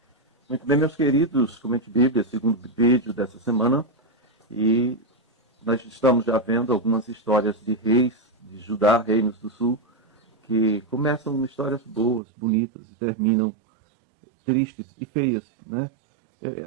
Muito bem, meus queridos, Comente Bíblia, segundo vídeo dessa semana, e nós estamos já vendo algumas histórias de reis de Judá, reinos do sul, que começam histórias boas, bonitas, e terminam tristes e feias, né?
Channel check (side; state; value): left; drops out; at 12.2 s